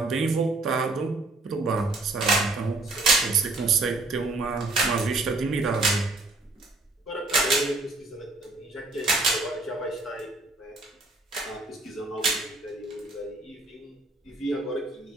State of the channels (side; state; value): left; quieter; 3.1 dB